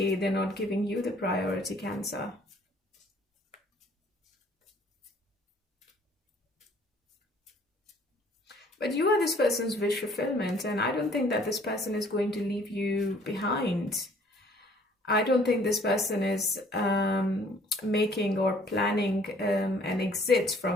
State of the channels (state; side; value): normal; both; correlation 0.58